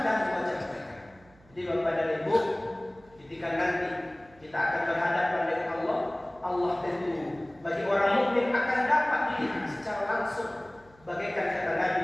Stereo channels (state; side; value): noise; right; hum, 28 dB below the sound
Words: wajah mereka. Jadi Bapak dan Ibu, ketika nanti kita akan berhadapan dengan Allah, Allah tentu bagi orang mukmin akan dapat dilihat secara langsung. Bagaikan kata Nabi,